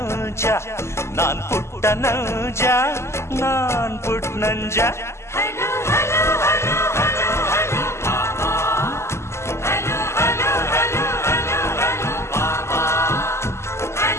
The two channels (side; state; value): right; late; 0.13 ms